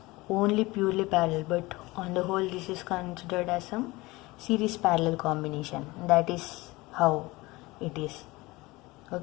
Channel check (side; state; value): right; quieter; 21.6 dB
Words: only purely parallel, but on the whole this is considered as some series parallel combination. That is how it is.